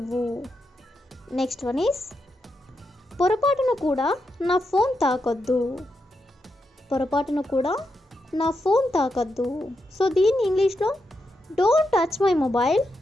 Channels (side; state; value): both; normal; correlation 0.85